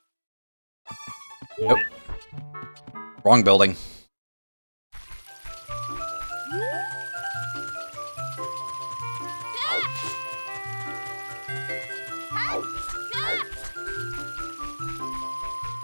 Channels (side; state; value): both; inverted; correlation -1.00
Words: Nope. Wrong building.